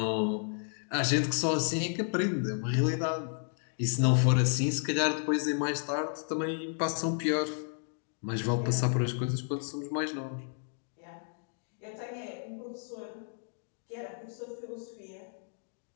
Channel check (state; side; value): silent; right; 56 dB below the other